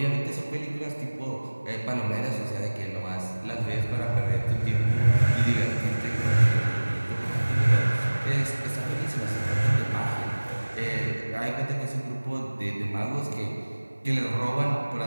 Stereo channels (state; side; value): inverted; both; correlation -1.00